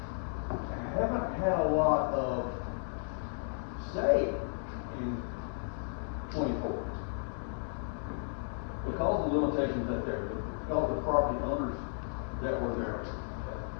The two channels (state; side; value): silent; right; digital silence